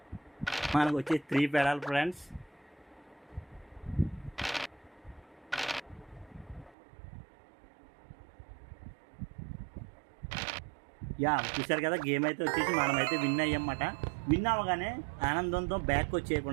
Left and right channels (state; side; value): drops out; left; at 6.8 s